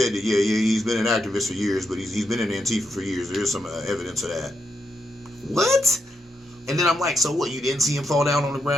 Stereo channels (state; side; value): normal; both; correlation 0.82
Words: that, yeah, he's been an activist for years, but he's been in Antifa for years. There's some evidence of that. What? And then I'm like, so what? You didn't see him fall down on the